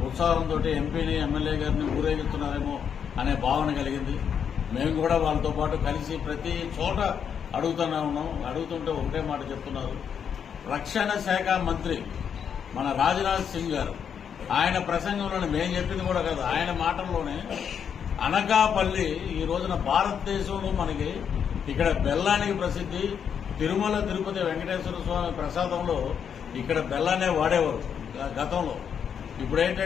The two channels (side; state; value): right; quieter; 7.7 dB